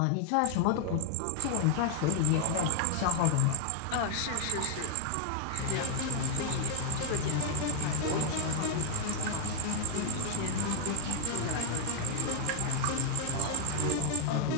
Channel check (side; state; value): both; different; correlation 0.00